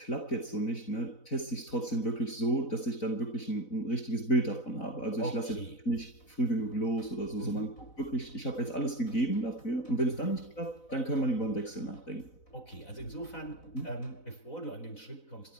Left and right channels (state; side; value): late; right; 4.0 ms